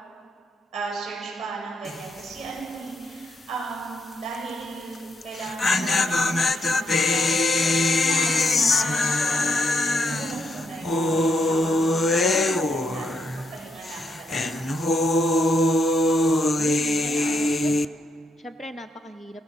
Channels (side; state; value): both; normal; correlation 0.78